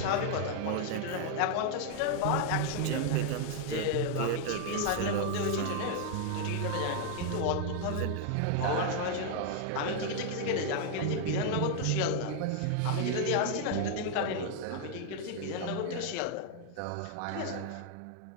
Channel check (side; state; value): both; different; correlation 0.00